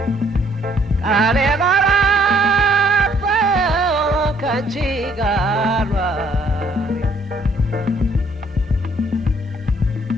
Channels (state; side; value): normal; both; correlation 0.65